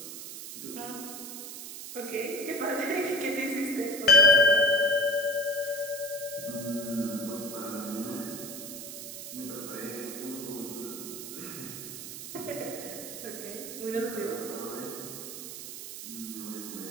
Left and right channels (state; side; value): noise; right; hiss, 9 dB below the sound